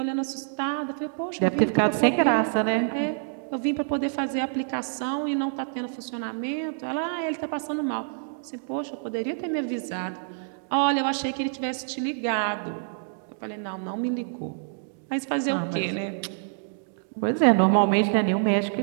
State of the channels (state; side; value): silent; left; digital silence